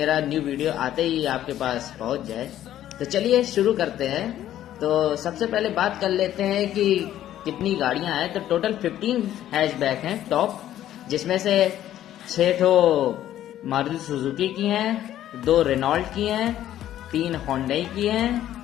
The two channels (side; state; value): right; quieter; 12.2 dB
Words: न्यू वीडियो आते ही आपके पास पहुंच जाए। तो चलिए शुरू करते हैं। तो सबसे पहले बात कर लेते हैं कि कितनी गाड़ियां हैं। तो टोटल 15 हैचबैक हैं टॉप, जिसमें से 6 ठो मारुति सुजुकी की हैं, 2 रेनॉल्ट की हैं, 3 होंडई की